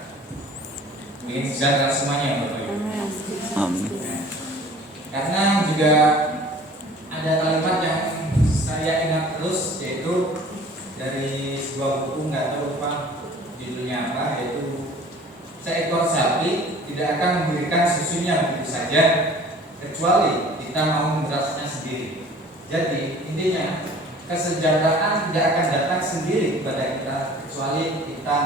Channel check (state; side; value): normal; both; correlation 0.48